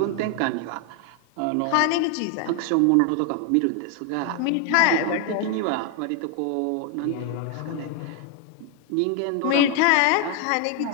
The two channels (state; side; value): different; both; correlation 0.01